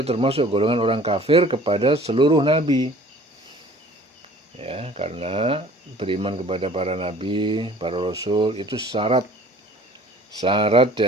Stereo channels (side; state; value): both; normal; correlation 0.50